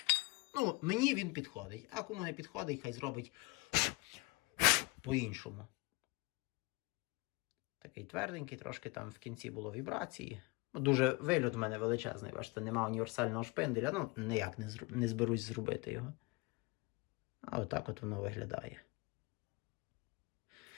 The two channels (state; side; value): quieter; right; 25.4 dB